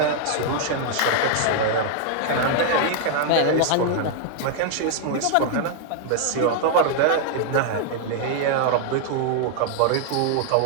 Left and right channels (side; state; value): both; different; correlation 0.00